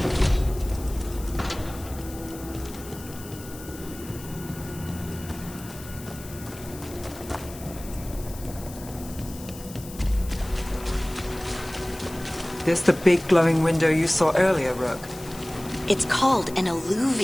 This the big glowing window you saw earlier, Rook? It's called an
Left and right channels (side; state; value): left; noise; hiss, 16 dB below the sound